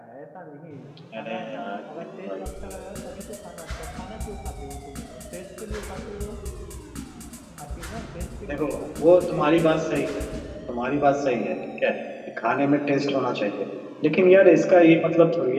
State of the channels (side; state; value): both; identical; correlation 1.00